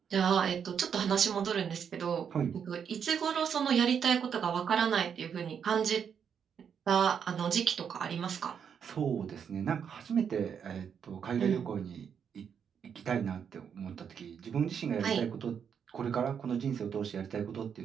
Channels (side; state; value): left; quieter; 7.5 dB